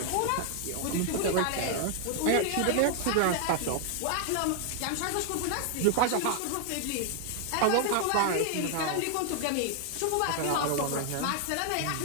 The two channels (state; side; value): different; both; correlation 0.00